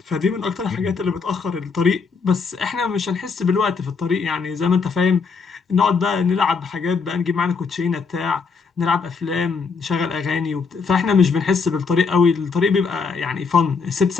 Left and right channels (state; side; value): quieter; right; 5.1 dB